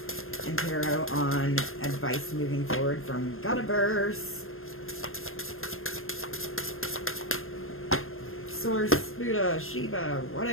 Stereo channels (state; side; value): late; right; 0.61 ms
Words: and tarot on advice moving forward from Godiverse. Source, Buddha, Shiva,